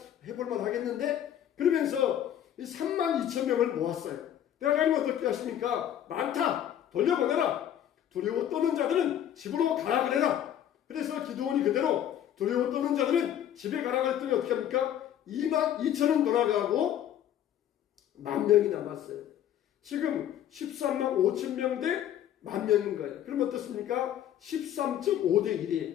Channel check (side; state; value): right; quieter; 10.6 dB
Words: 해볼만 하겠는데? 그러면서 이 3만 2천 명을 모았어요. 하나님은 어떻게 하십니까? 많다! 돌려보내라! 두려워 떠는 자들은 집으로 가라 그래라! 그래서 기드온이 그대로 두려워 떠는 자들은 집에 가라 그랬더니 어떻게 합니까? 2만 2천은 돌아가고 10,000명이 남았어요. 지금 13만 5천 명 대 10,000명인 거예요. 그럼 어떻습니까? 13.5대